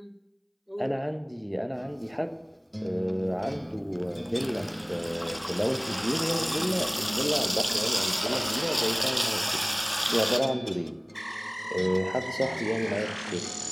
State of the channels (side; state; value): both; identical; correlation 1.00